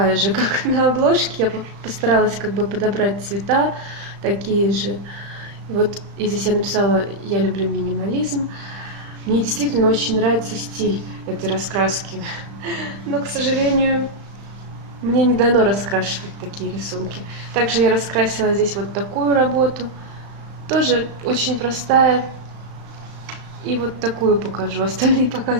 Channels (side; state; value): left; late; 35 ms